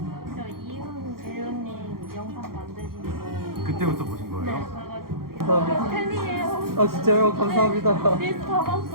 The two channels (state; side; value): late; left; 0.93 ms